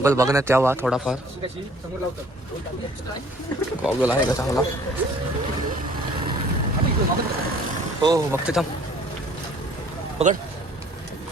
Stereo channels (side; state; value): both; normal; correlation 0.55